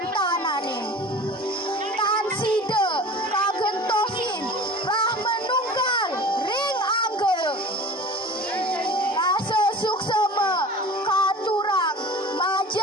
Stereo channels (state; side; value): normal; both; correlation 0.39